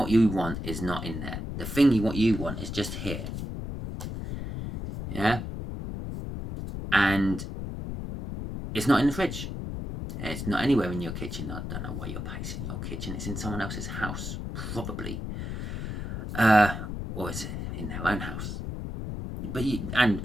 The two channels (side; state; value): left; noise; rumble, 5 dB below the sound